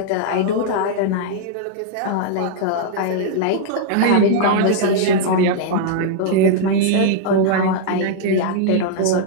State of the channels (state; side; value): different; both; correlation -0.01